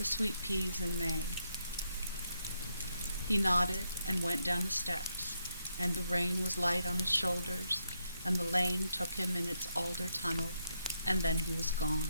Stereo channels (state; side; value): inverted; both; correlation -0.80